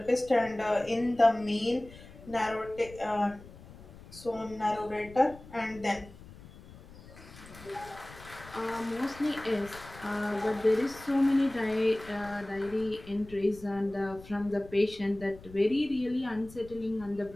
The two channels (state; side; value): noise; left; rumble, 19 dB below the sound